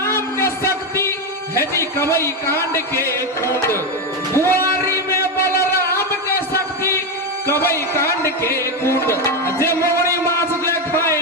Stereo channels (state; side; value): normal; both; correlation 0.11